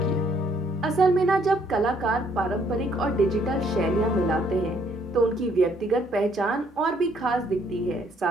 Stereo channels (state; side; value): normal; both; correlation 0.67